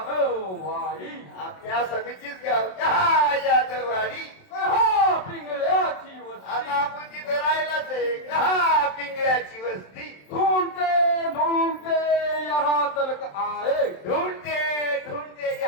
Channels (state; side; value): late; right; 27 ms